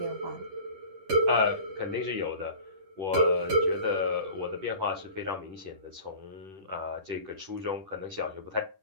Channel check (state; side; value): late; left; 10 ms